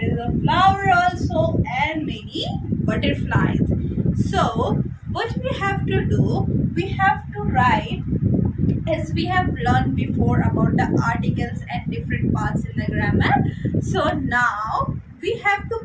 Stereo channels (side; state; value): both; identical; correlation 1.00